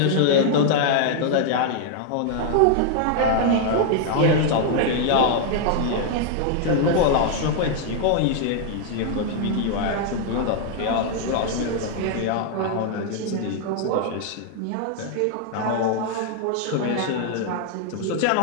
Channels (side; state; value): both; different; correlation 0.00